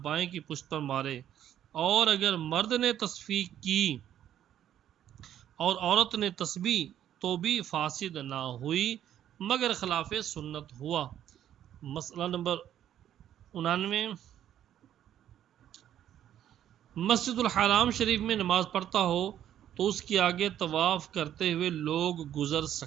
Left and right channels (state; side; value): quieter; left; 10.9 dB